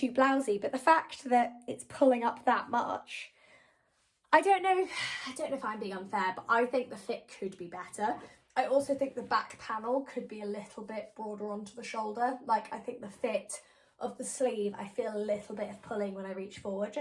blousy. But the fact that it's pulling up that much, I don't know if I'm being unfair, but I think the fit could be better. I also think the back panel could be a little bit broader onto the shoulder. Like, I think the fit of the sleeve, I feel a little bit of pulling when I reach forward.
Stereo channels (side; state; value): both; identical; correlation 1.00